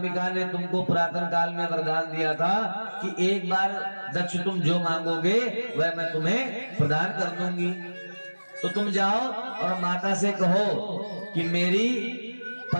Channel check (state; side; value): inverted; both; correlation -1.00